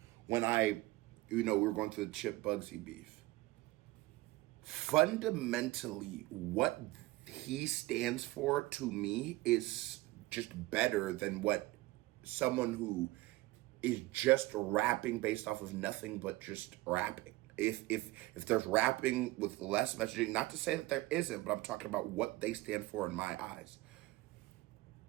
when we were going through the Chip Bugzy beef. Fundamentally, what he stands for to me is just better than what someone who is just rapping based off of nothing but just rapping. If there's rapping with less messaging, not to say that there isn't, but I'm talking about what they stand for in my eyes.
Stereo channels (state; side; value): quieter; left; 19.5 dB